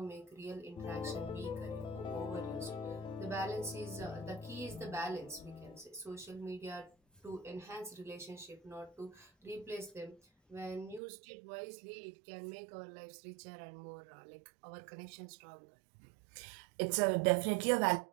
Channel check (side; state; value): left; drops out; at 11.0 s